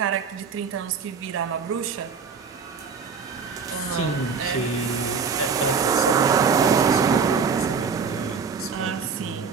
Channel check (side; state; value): left; quieter; 5.7 dB